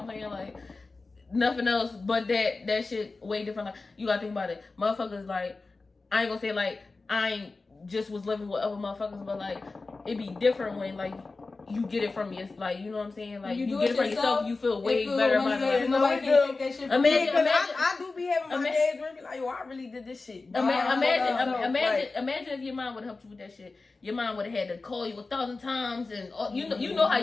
I'm saying? Like, nothing else but that shit way different. Like, you gotta think about it. Motherfuckers, like, I ain't gonna say, like, I ain't just was living with other motherfuckers, but, like, it be different when, like, you get it from your, like, you know what I'm saying? Like, you get it from yourself, you feel way better about it. Nobody can take that shit from you. Imagine, I do be having my days where I be like, yo, I really did this shit. Imagine if your mom would have helped you with that shit. Your mom would have had to call you 1,000 times, and you know how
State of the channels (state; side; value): quieter; right; 3.7 dB